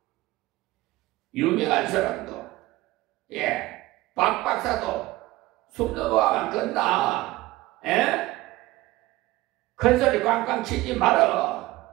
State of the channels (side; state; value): left; quieter; 18.4 dB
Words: 유명한 사람도 박 박사도 숨 넘어가면 끝나. 에? 큰 소리 꽝꽝 치지 말어.